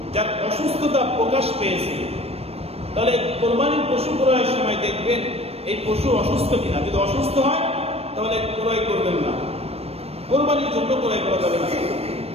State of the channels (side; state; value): left; late; 0.29 ms